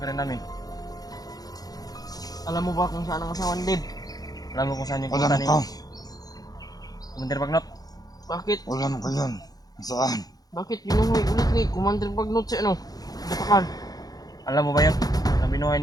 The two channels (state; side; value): late; right; 0.18 ms